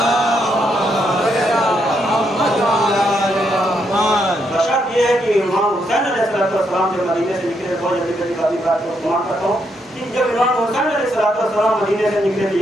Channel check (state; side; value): normal; both; correlation 0.78